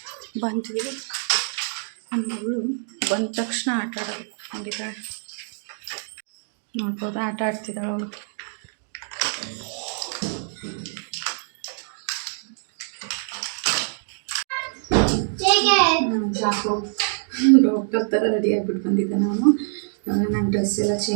ಬಂದ್ವಿ. ಮಗಳು ಬಂದ ತಕ್ಷಣ ಆಟ ಆಡೋದು ಹಂಗಿದ್ದಾಳೆ ನೋಡ್ಬೋದು. ಆಟ ಆಡ್ತಿದ್ದಾಳೆ ಅವಳು. ಡಾಕ್ಟರ್ ಥರ ರೆಡಿ ಆಗಿಬಿಟ್ಟು ಬಂದಿದ್ದೆ ನಾನು. ನನ್ನ ಡ್ರೆಸ್ ಎಲ್ಲ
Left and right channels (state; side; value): silent; left; digital silence